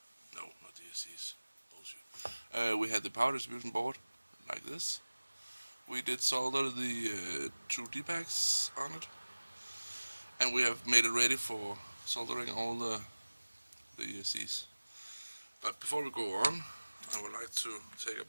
No, not the ESCs. Bullshit. We had the power distribution board like this. We did solder the two D-packs on it. And we have made it ready for soldering all the ESCs. But before we go on, I would like to take a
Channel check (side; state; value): both; inverted; correlation -1.00